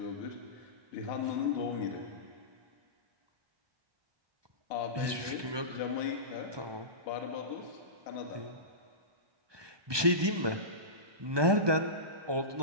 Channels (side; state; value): left; late; 1.2 ms